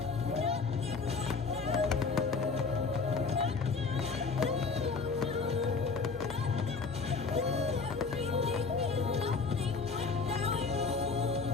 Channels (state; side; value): quieter; right; 4.7 dB